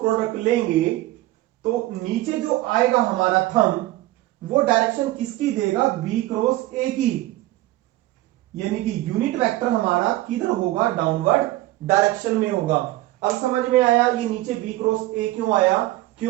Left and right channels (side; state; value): left; quieter; 17.1 dB